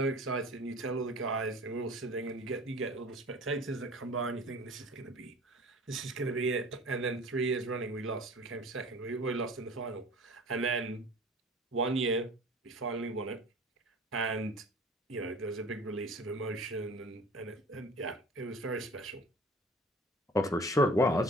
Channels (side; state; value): both; normal; correlation 0.43